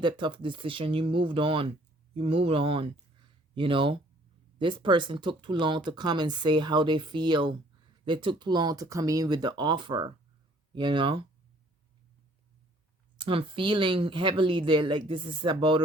tough decision. You moved on. You moved on, you know. This person took too long to come and say how they feel. They took too long to come in with the offer, you know. I'm feeling heavily that, like, this is about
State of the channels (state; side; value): normal; both; correlation 0.58